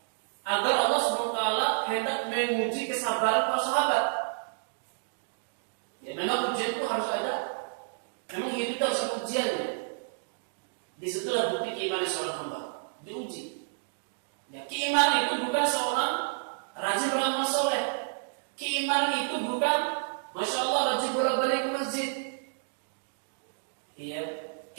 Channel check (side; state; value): left; silent; digital silence